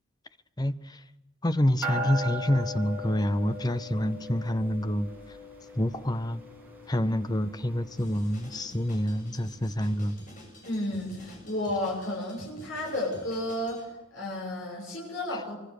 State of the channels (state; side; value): normal; both; correlation 0.79